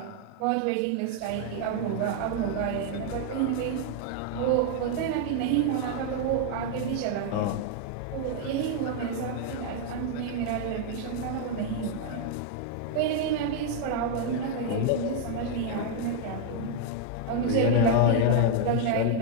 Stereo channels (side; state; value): both; different; correlation 0.00